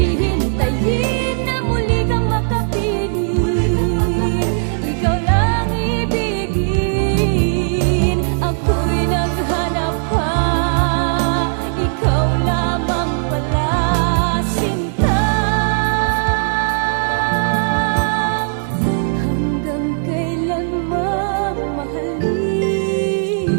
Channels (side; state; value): left; silent; 68 dB below the other